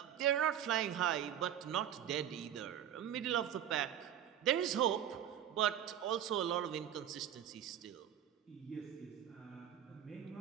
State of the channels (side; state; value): left; quieter; 10.3 dB